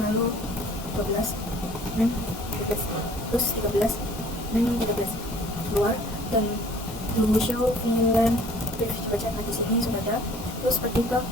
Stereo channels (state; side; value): normal; both; correlation 0.52